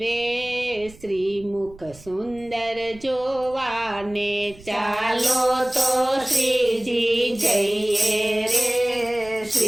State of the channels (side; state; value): right; noise; rumble, 22 dB below the sound